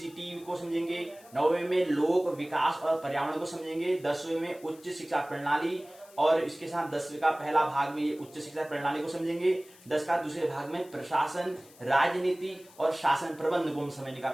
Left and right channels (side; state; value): left; noise; hiss, 24 dB below the sound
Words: को समझेंगे, नौवें में लोक विकास और पर्यावरण को समझेंगे, 10वें में उच्च शिक्षा प्रणाली, और इसके साथ 10वें का पहला भाग में ये उच्च शिक्षा प्रणाली को समझेंगे, 10 का दूसरे भाग में प्रशासन, राजनीति और शासन प्रबंध को हम समझने का